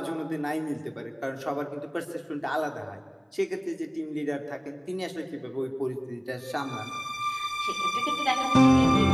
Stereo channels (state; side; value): identical; both; correlation 1.00